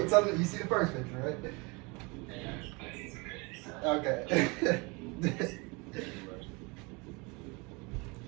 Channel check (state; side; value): quieter; left; 28.1 dB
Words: till you see the first picture, right? Okay.